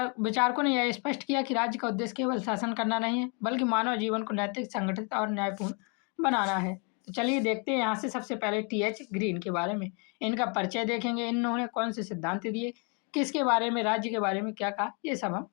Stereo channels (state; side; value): quieter; right; 35.6 dB